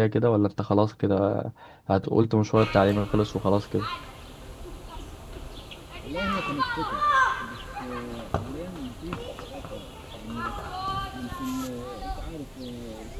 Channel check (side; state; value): both; identical; correlation 1.00